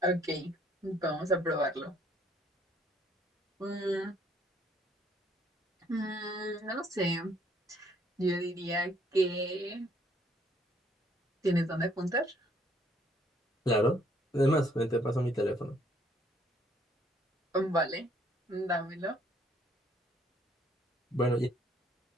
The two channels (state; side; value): normal; both; correlation 0.65